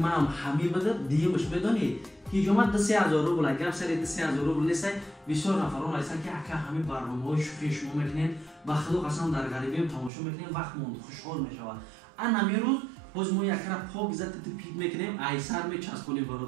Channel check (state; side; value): drops out; left; at 10.1 s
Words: هم همی بده دیگه بش بدانید هیجومت 3000 روبل اگر سری 3000 روبل نیست بسیار نفران هستن که اگر همین برنامه‌های شوخی شما میکنین و خدا قسم در غریبی تماشا میکنین وقت موند خوشحال میشود ان همین روز باز ما یک را پاک زد پیک میکنیم ایسر میچسبونیم